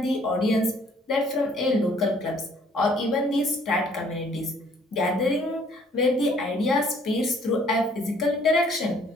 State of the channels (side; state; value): both; normal; correlation 0.60